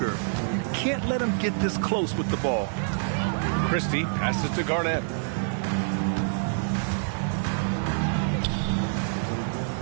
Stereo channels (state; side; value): silent; left; 60 dB below the other